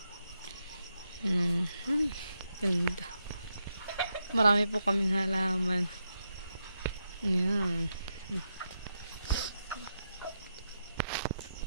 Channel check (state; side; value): inverted; both; correlation -0.85